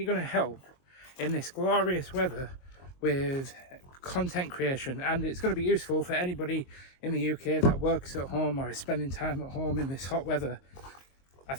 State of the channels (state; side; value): late; right; 22 ms